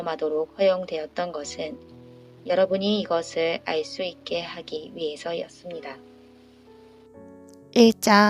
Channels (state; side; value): identical; both; correlation 1.00